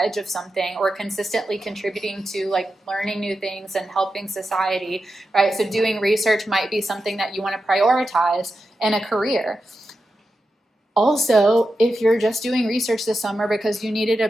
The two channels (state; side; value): normal; both; correlation 0.90